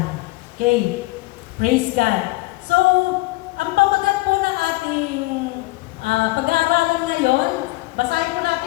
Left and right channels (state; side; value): quieter; right; 21.4 dB